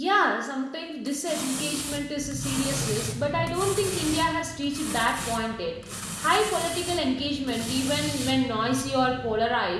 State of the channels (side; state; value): both; identical; correlation 1.00